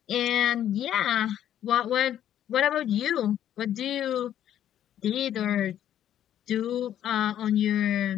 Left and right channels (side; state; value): right; quieter; 10.9 dB